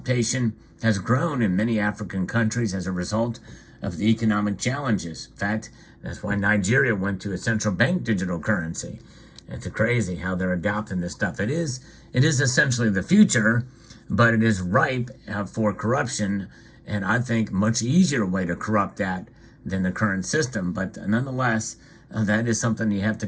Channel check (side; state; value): both; identical; correlation 1.00